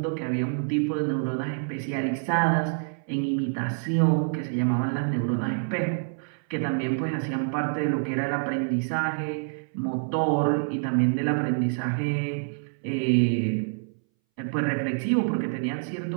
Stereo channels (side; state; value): left; silent; 60 dB below the other